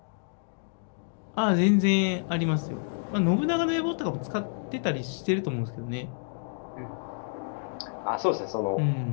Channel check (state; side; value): silent; right; digital silence